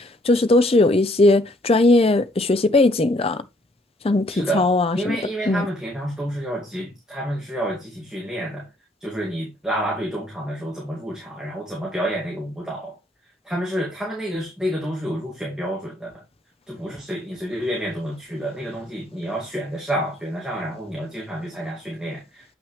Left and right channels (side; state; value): both; normal; correlation 0.66